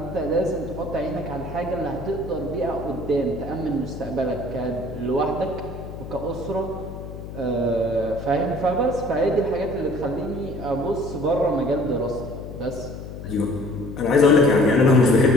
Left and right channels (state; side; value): noise; left; hum, 11 dB below the sound